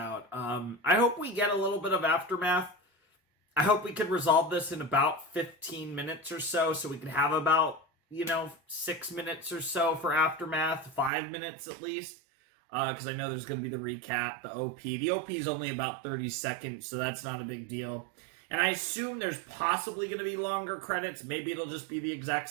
I hope we get a little bit of aftermath. I hope we can resolve this in about 15 minutes or so we can have about, 6 minutes or so for aftermath, 5 minutes at least. Because I know there's going to be the recap, the OP. The OP is only about 30 seconds, so that's not a big deal. And I assume there's possibly going to be longer credits. Maybe it'll just be the exact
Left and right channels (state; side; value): drops out; left; at 11.1 s